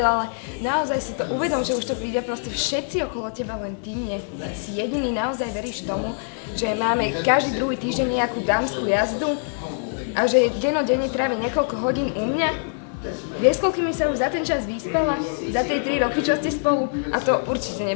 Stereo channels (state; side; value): silent; right; 56 dB below the other